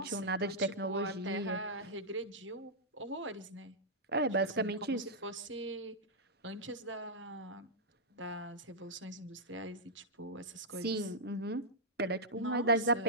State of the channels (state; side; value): normal; both; correlation -0.10